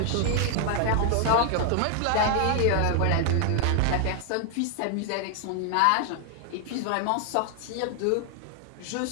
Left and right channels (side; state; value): both; different; correlation 0.00